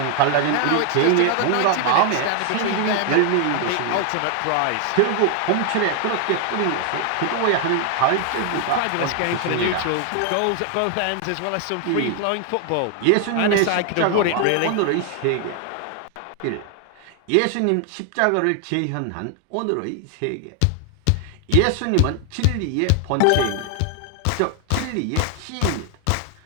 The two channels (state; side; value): different; both; correlation 0.00